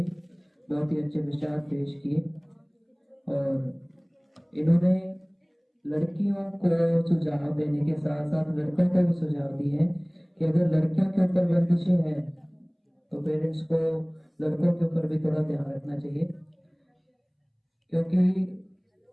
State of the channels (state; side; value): identical; both; correlation 1.00